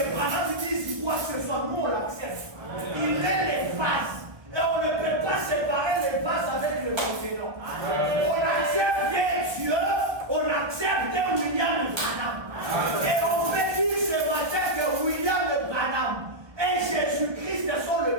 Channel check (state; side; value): late; left; 1.2 ms